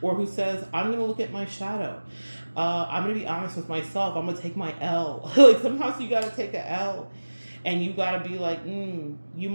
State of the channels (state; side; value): inverted; both; correlation -1.00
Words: Or who says, I'm going to look at my shadow. I'm going to be honest with myself. I'm going to take my L. Like, sometimes you got to take a L. And you got to be like, you